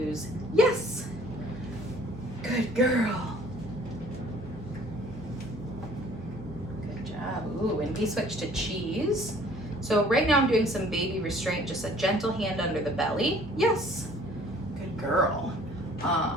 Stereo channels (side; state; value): both; normal; correlation 0.55